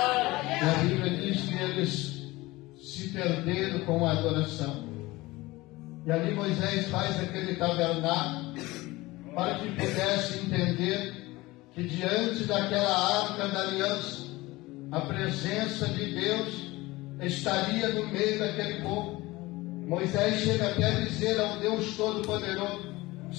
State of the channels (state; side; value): quieter; right; 20.3 dB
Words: E a Bíblia diz que eles se perderam com a adoração. E ali Moisés faz aquele tabernáculo para que pudesse entender que diante daquela arca da aliança, a presença de Deus estaria no meio daquele povo. Moisés chega até a dizer ao Deus Todo-Poderoso: